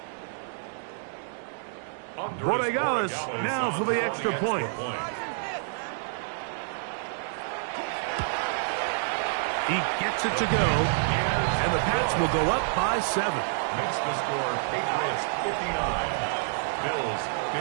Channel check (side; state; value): left; silent; 59 dB below the other